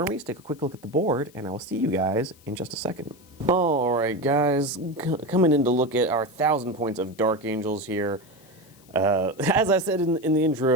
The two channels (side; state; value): left; noise; hiss, 27 dB below the sound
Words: take a quick look at the board, and I will see you guys in just a second. Alright guys, coming in to look at our 1,000 points of Dark Angels here. As I said in the